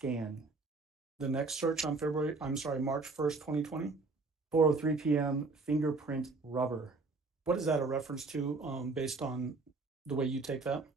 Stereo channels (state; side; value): quieter; left; 3.8 dB